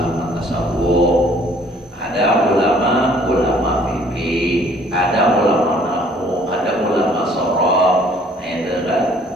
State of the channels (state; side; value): normal; both; correlation 0.58